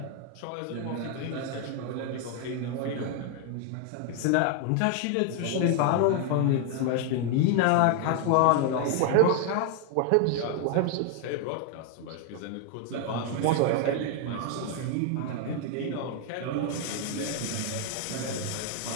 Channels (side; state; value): both; different; correlation 0.01